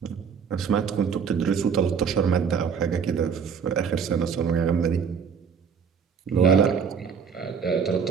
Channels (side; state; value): left; quieter; 6.6 dB